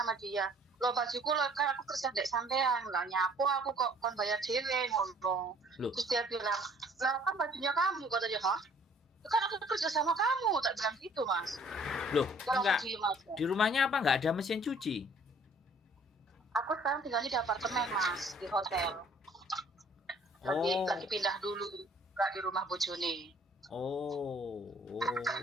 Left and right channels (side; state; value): both; normal; correlation 0.57